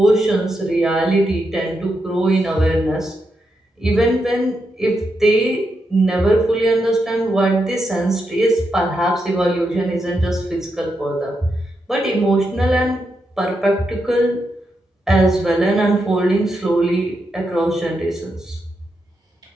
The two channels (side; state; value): both; normal; correlation 0.84